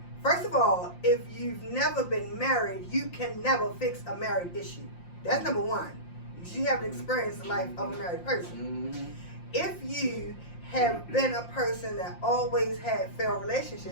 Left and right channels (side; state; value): right; late; 5.7 ms